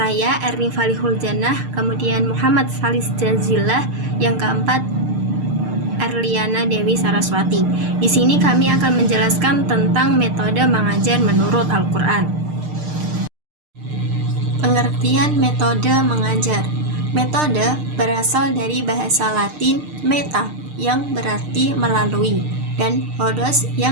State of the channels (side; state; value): left; late; 6.6 ms